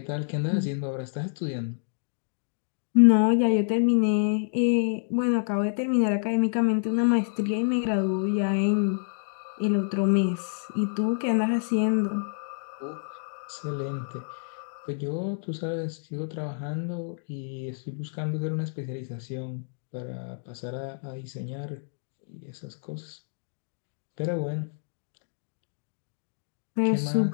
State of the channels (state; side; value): silent; right; digital silence